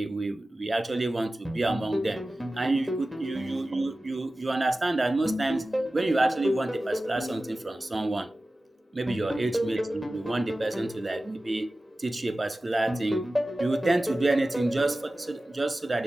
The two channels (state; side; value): normal; both; correlation 0.96